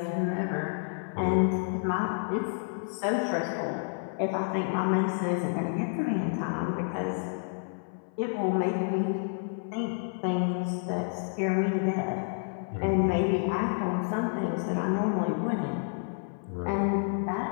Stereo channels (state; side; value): silent; right; 58 dB below the other